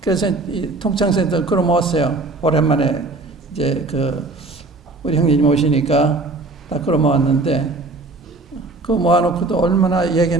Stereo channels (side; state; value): left; quieter; 3.3 dB